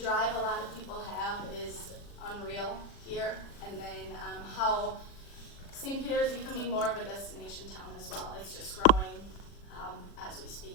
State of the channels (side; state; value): right; late; 40 ms